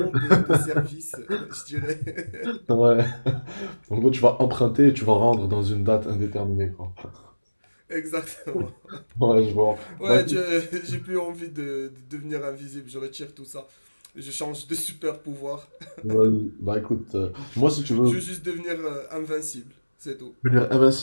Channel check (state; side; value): inverted; both; correlation -1.00